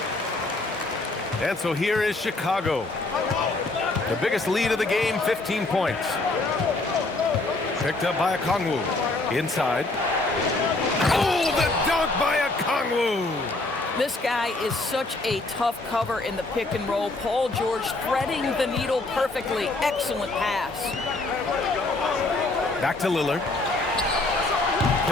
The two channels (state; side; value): quieter; right; 3.1 dB